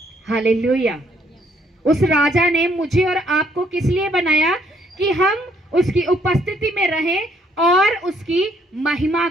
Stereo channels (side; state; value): both; normal; correlation 0.67